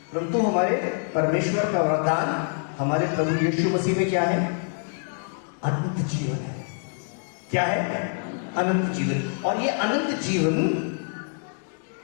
परंतु हमारे परमेश्वर का वरदान हमारे प्रभु यीशु मसीह में क्या है? अनंत जीवन है। क्या है? अनंत जीवन। और ये अनंत जीवन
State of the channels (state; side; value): silent; right; 61 dB below the other